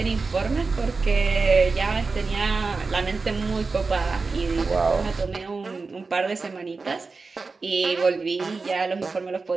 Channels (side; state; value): left; quieter; 4.2 dB